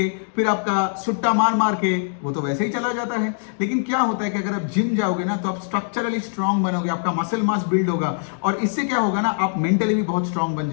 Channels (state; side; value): silent; right; digital silence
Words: फिर आपका सुट्टा मार मार के वो तो वैसे ही चला जाता है। लेकिन क्या होता है कि अगर आप जिम जाओगे ना तो आप स्ट्रक्चरली स्ट्रांग बनोगे, आपका मसल मास बिल्ड होगा, और इससे क्या होगा ना, आप मेंटली भी बहुत स्ट्रांग बन